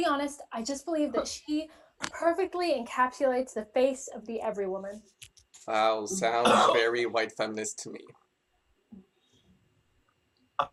be honest, I just believe that she perfectly encapsulates the face of the every woman. Wow, sounds very white feminist to me.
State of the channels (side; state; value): both; identical; correlation 1.00